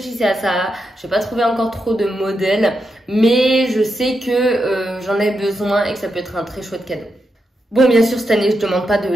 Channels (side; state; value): both; normal; correlation 0.85